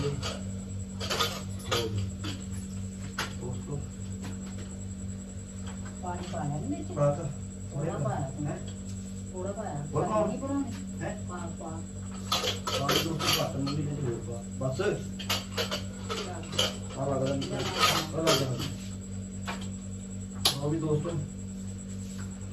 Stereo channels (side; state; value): both; identical; correlation 1.00